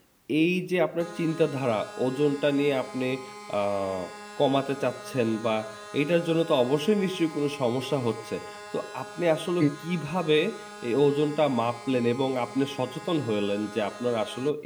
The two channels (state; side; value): identical; both; correlation 1.00